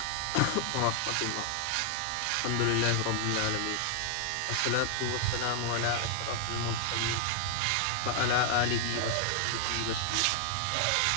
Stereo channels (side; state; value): both; different; correlation 0.00